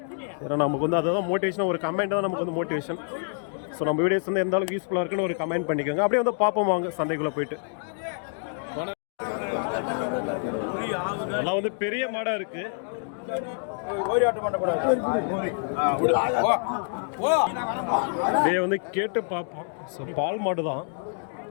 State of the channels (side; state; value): right; silent; 60 dB below the other